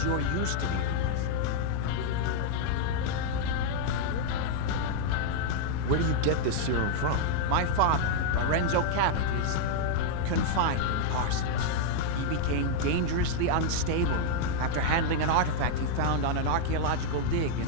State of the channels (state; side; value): different; both; correlation -0.01